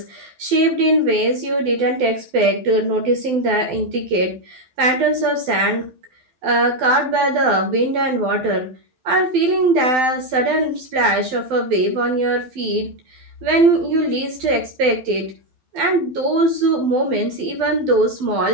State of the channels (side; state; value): left; late; 12 ms